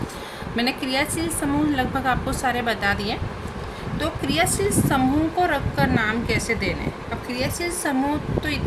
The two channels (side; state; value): both; identical; correlation 1.00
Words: मैंने क्रियाशील समूह लगभग आपको सारे बता दिए। तो क्रियाशील समूह को रखकर नाम कैसे देने। अब क्रियाशील समूह तो